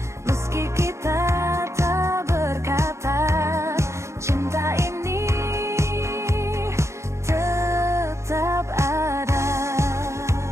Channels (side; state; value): left; late; 0.14 ms